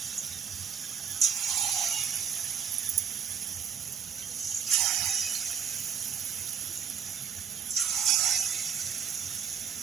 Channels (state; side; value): quieter; left; 8.0 dB